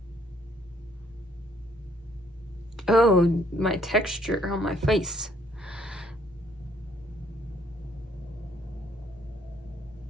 Oh, my texture on my face.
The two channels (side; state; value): both; normal; correlation 0.66